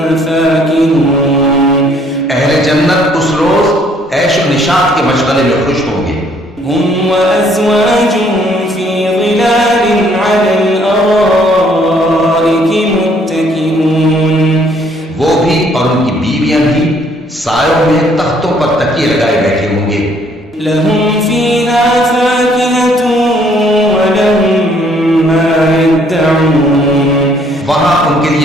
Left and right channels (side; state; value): both; normal; correlation 0.64